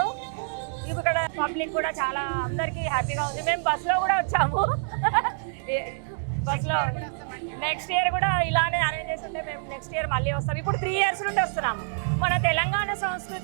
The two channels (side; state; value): left; silent; digital silence